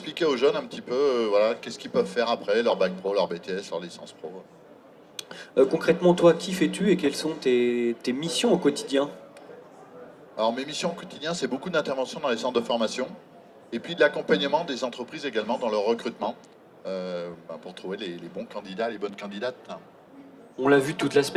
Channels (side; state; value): both; identical; correlation 1.00